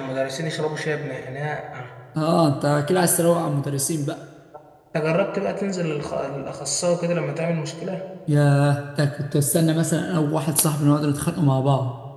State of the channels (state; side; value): identical; both; correlation 1.00